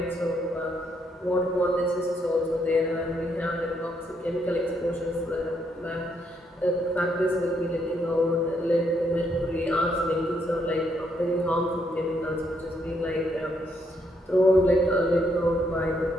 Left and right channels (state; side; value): normal; both; correlation 0.75